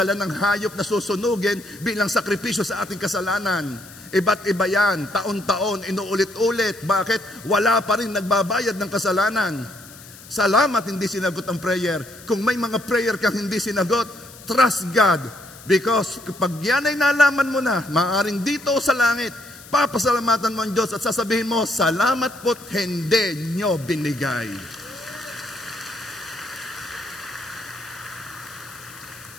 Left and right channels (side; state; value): left; noise; hiss, 19 dB below the sound